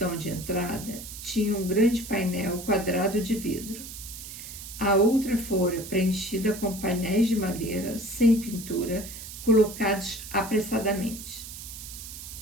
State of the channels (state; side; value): noise; right; hiss, 11 dB below the sound